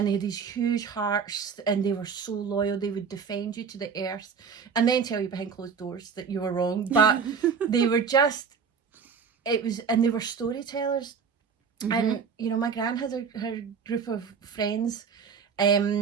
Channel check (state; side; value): quieter; left; 6.1 dB